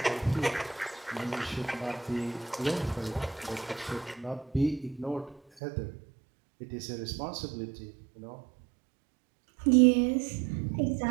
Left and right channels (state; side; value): drops out; left; at 5.4 s